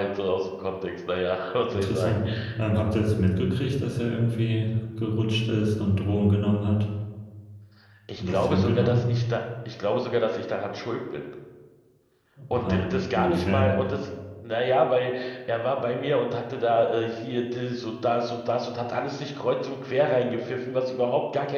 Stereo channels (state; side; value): identical; both; correlation 1.00